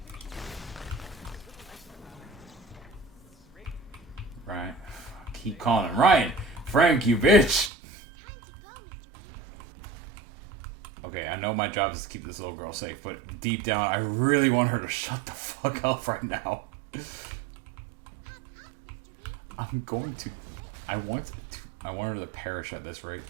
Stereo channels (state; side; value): drops out; left; at 7.7 s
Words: Mr. B. Right. Keep calling him Ryan. Frank, you bitch. Time to go, Mr. B. Okay, I know my job is to keep this little girl safe, but deep down, I really want her to shut the fuck up right now. I'm going to. I want her to perish at this rate.